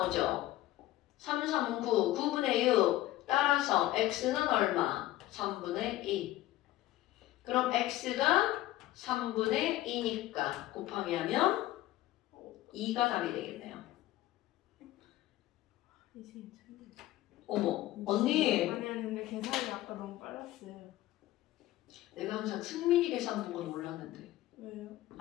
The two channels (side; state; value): right; quieter; 15.8 dB